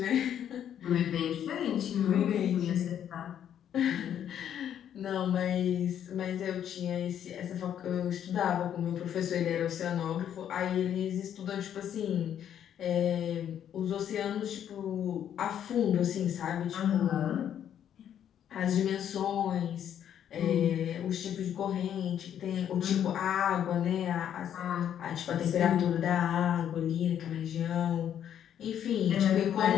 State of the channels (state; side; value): quieter; right; 9.7 dB